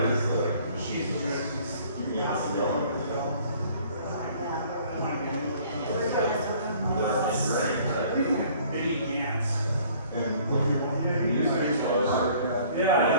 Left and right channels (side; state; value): both; inverted; correlation -0.55